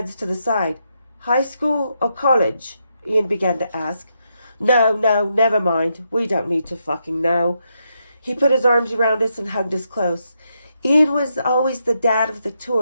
to the side. High school or college? Ian began to ask. No, never mind. We don't need to fucking know. He put his arms around us and hugged us close. Ian was always the dad of the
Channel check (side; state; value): both; inverted; correlation -0.81